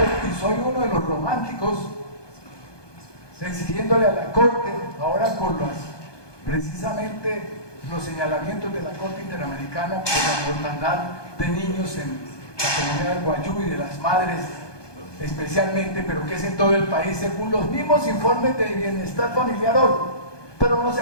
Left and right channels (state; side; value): late; right; 1.2 ms